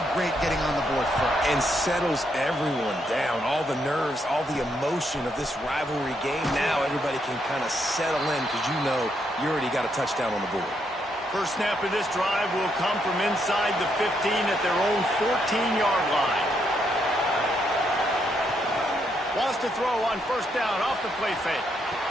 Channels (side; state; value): both; normal; correlation 0.77